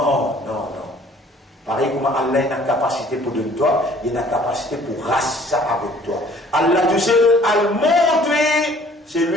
Pareil comme Allah a une capacité pour donner toi, il a une capacité pour raser ça avec toi. Allah tout seul, al montre, c'est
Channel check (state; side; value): normal; both; correlation 0.55